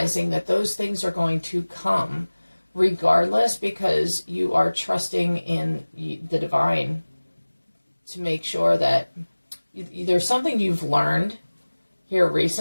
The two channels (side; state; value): both; inverted; correlation -1.00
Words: that those things are going to come regardless, because you are trusting in the divine to make sure that there's something you've learned here